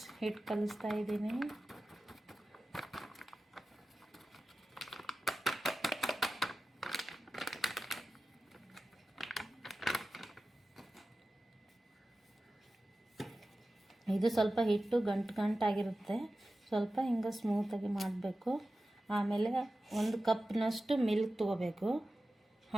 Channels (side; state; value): both; normal; correlation 0.94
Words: ಹಿಟ್ಟು ಕಲಿಸ್ತಾ ಇದ್ದೀನಿ. ಇದು ಸ್ವಲ್ಪ ಹಿಟ್ಟು ಗಂಟಾಗಿರುತ್ತೆ, ಸ್ವಲ್ಪ ಹಿಂಗೆ ಸ್ಮೂತಾಗಿ ಮಾಡಬೇಕು. ಆಮೇಲೆ 1 ಕಪ್ನಷ್ಟು ಮಿಲ್ಕ್ ತೊಗೋಬೇಕು,